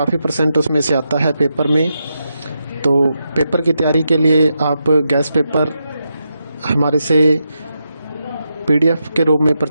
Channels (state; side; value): inverted; both; correlation -0.85